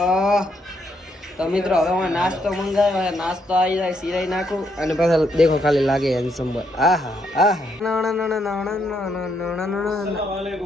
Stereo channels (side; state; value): both; normal; correlation 0.75